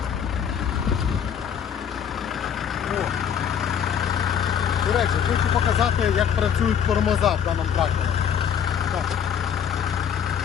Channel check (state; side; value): quieter; right; 8.2 dB